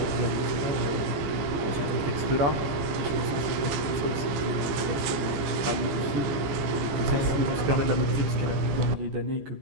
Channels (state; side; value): late; left; 15 ms